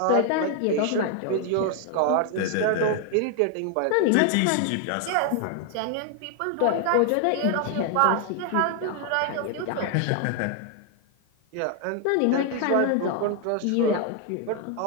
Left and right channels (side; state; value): both; different; correlation 0.00